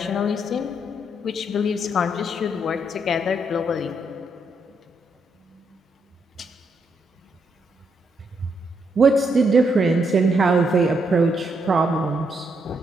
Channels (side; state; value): both; normal; correlation 0.77